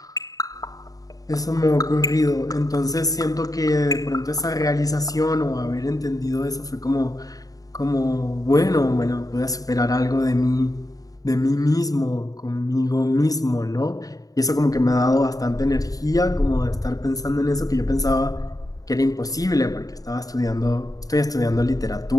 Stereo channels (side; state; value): right; late; 0.18 ms